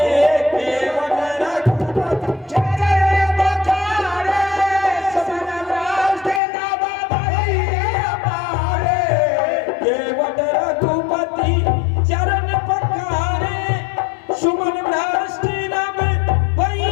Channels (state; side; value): drops out; right; at 6.4 s